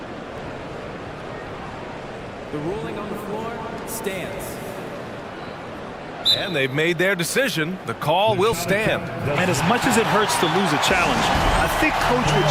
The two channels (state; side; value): identical; both; correlation 1.00